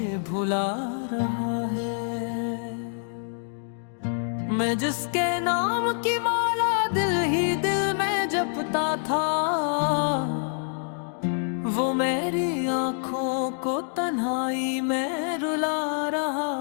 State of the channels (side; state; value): right; silent; 61 dB below the other